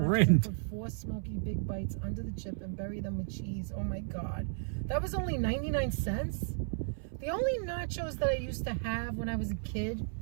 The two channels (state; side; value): silent; left; 55 dB below the other